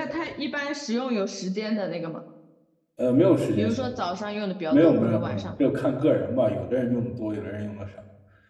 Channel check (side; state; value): both; identical; correlation 1.00